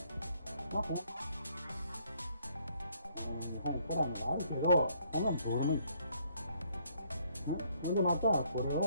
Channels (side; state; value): both; inverted; correlation -0.67